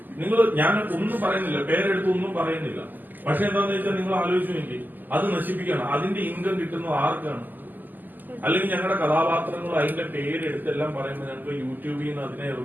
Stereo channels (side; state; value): left; late; 0.086 ms